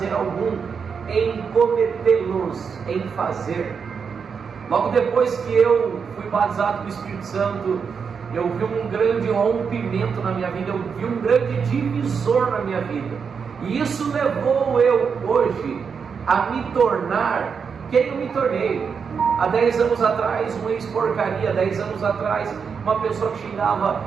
algum em cometê-los, em fazer. Logo depois que eu fui batizado com o Espírito Santo, eu vi um grande rompimento na minha vida, eu vi um grande divisor na minha vida, e isso levou eu hoje a me tornar quem eu me tornei. Há 10 anos atrás, um ex-porcaria. 10 anos atrás, uma pessoa que xingava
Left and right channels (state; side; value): quieter; left; 6.1 dB